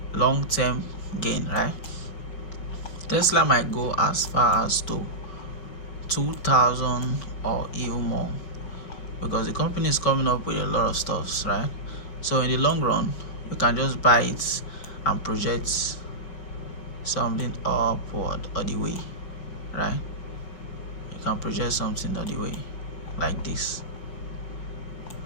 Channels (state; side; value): late; right; 5.4 ms